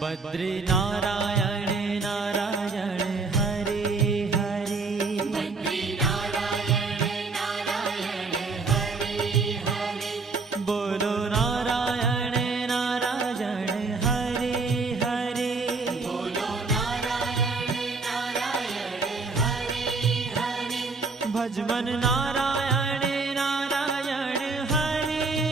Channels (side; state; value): left; quieter; 4.1 dB